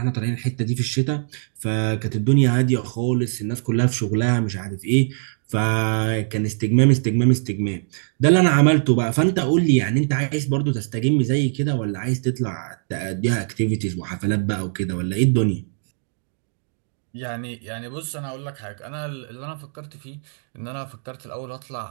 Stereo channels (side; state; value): left; silent; digital silence